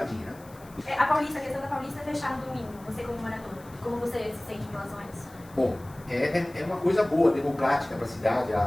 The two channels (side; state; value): left; noise; hiss, 24 dB below the sound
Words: né? A questão da Paulista é fechar no domingo, você como morador. Como você se sente em relação a isso? Bom, é uma coisa boa, democrática para a cidade.